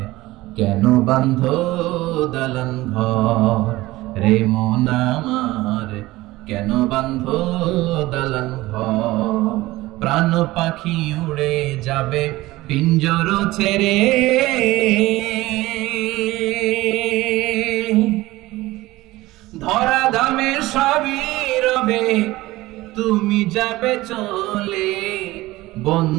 কেন বাঁধো দালান ঘর রে মন আমার, কেন বাঁধো দালান ঘর। প্রাণ পাখি উড়ে যাবে পিঞ্জর ছেড়ে, ধরা ধামে সবই রবে তুমি যাবে চলে।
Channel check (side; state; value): left; quieter; 18.5 dB